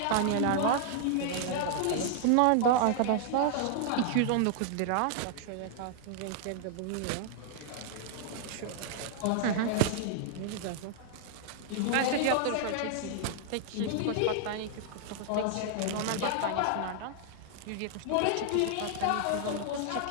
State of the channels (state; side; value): different; both; correlation -0.01